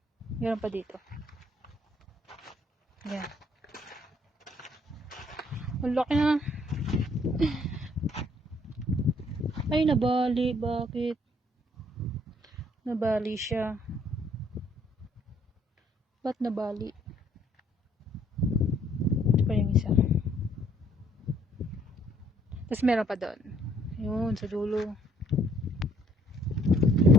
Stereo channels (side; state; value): both; normal; correlation 0.64